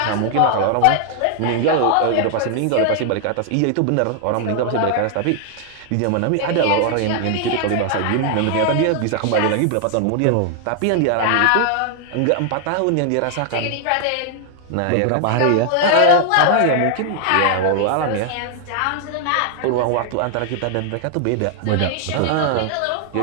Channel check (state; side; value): different; both; correlation 0.00